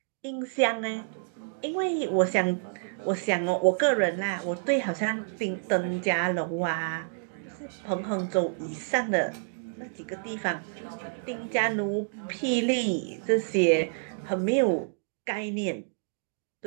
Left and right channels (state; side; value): silent; left; digital silence